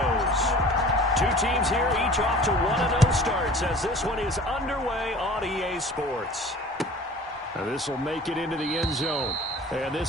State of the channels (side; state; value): both; normal; correlation 0.45